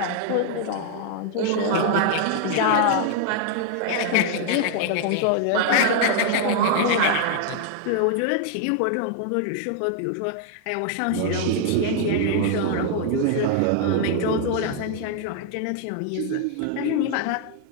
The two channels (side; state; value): both; different; correlation 0.00